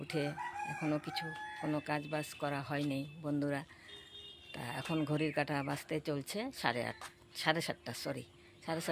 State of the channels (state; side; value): identical; both; correlation 1.00